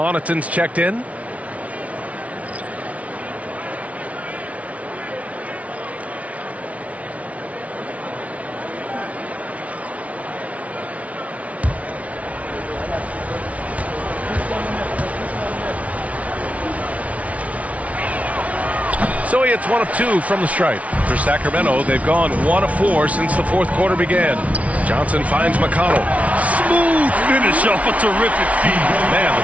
checked in. So he hits 1 of 2 from the stripe. For Sacramento, they've gone 1 of 4 since the fourth quarter began. Johnson finds McConnell. Smooth finish off a terrific feed. Man,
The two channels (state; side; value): late; left; 0.066 ms